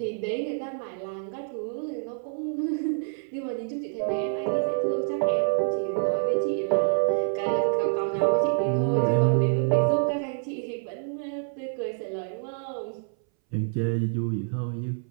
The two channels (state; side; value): silent; left; 60 dB below the other